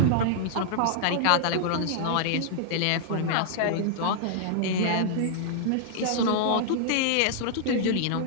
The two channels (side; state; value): both; different; correlation -0.01